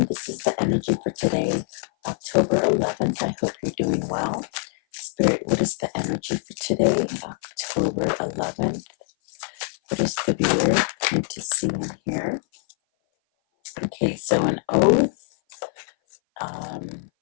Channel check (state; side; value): silent; right; 57 dB below the other